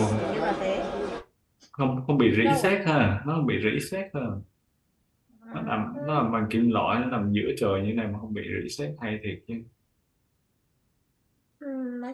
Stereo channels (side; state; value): both; identical; correlation 1.00